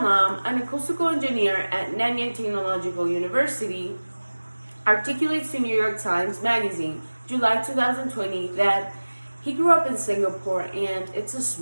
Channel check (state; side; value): inverted; both; correlation -1.00